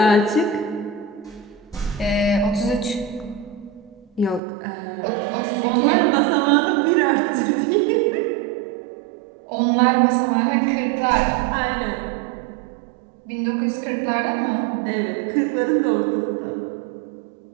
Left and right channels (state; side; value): drops out; left; at 4.4 s